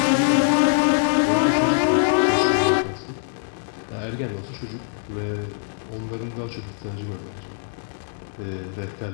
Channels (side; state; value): right; silent; 63 dB below the other